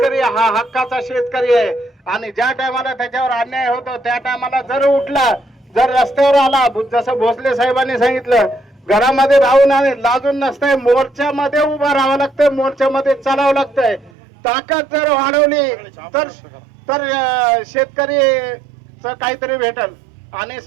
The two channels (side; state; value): left; drops out; at 14.1 s